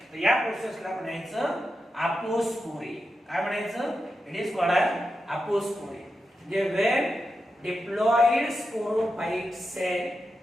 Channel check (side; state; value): both; normal; correlation 0.89